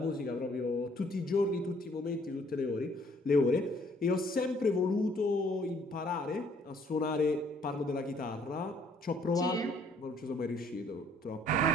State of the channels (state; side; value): normal; both; correlation 0.62